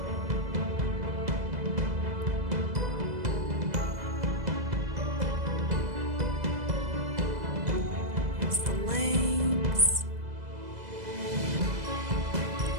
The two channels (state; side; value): late; left; 2.0 ms